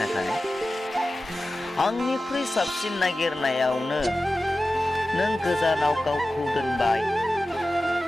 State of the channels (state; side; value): normal; both; correlation 0.94